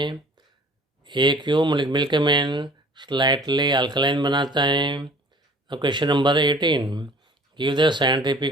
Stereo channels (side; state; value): both; normal; correlation 0.49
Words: ये क्यों मिल्कमैन स्लाइटली अल्कलाइन बनाता है? Question number 18, give the